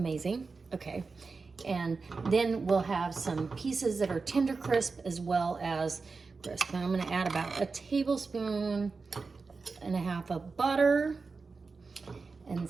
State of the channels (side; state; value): left; quieter; 4.4 dB